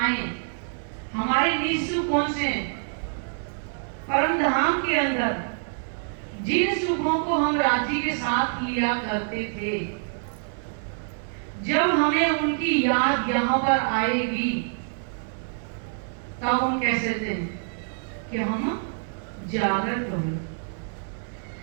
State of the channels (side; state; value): left; silent; 57 dB below the other